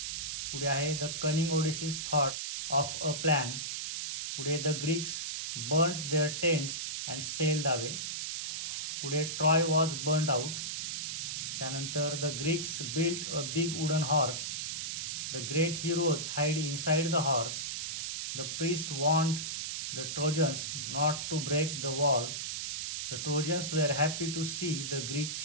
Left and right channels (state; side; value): noise; right; hiss, 3 dB below the sound